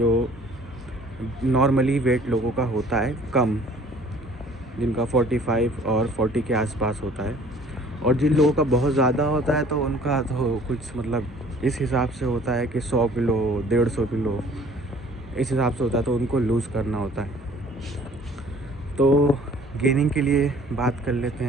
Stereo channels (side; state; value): both; normal; correlation 0.53